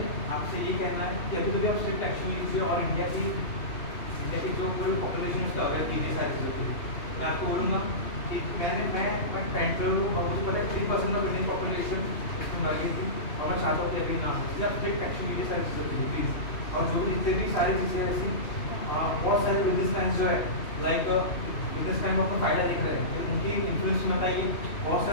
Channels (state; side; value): late; right; 2.8 ms